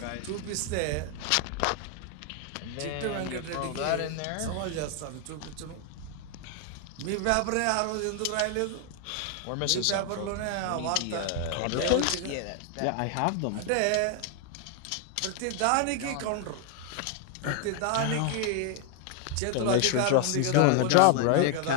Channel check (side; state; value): both; different; correlation 0.00